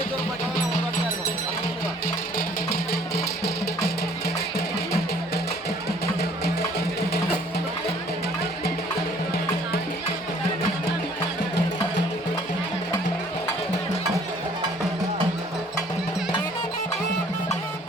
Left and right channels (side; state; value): both; normal; correlation 0.58